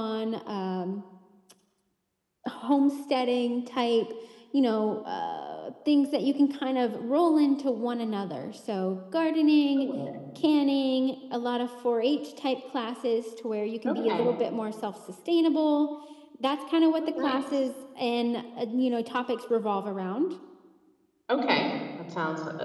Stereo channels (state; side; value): identical; both; correlation 1.00